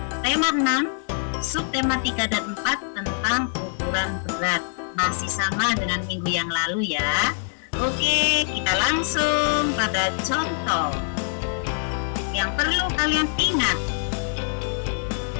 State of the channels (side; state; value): right; silent; digital silence